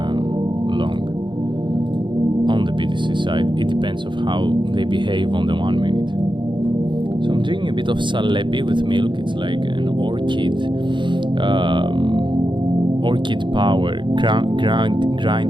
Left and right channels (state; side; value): late; left; 0.23 ms